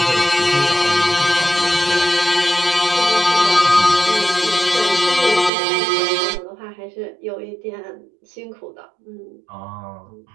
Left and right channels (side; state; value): left; drops out; at 5.5 s